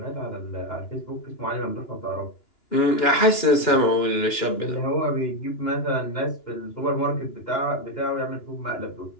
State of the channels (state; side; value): late; right; 2.9 ms